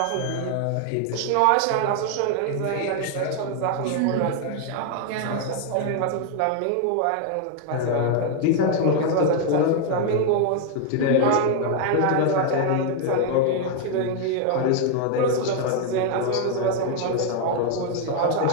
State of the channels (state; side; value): different; both; correlation 0.00